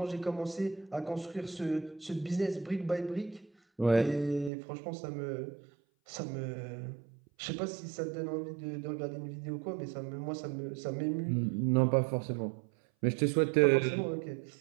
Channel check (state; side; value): drops out; left; at 4.5 s